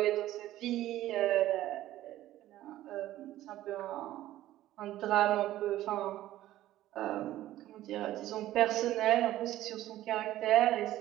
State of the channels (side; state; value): left; quieter; 14.3 dB